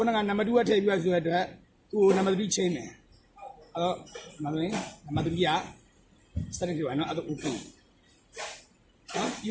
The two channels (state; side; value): identical; both; correlation 1.00